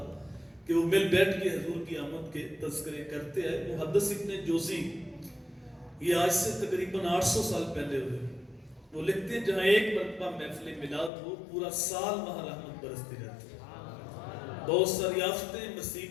کہ وہ مل بیٹھ کے حضور کی آمد کے تذکرے کرتے ہیں. محدث ابن جوزی یہ آج سے تقریباً 800 سال پہلے ہوئے. وہ لکھتے ہیں جہاں ایک مرتبہ محفل میلاد ہو پورا سال وہاں رحمت برستی رہتی ہے. بہت ساری آفتیں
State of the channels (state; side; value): drops out; right; at 11.1 s